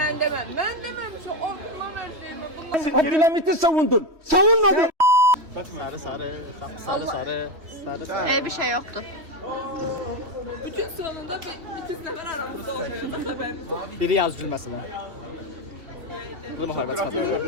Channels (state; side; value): late; left; 3.1 ms